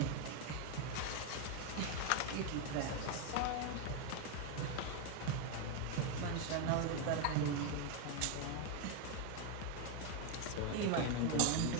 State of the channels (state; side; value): different; both; correlation 0.01